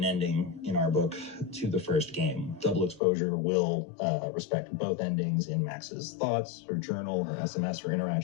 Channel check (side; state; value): right; drops out; at 3.0 s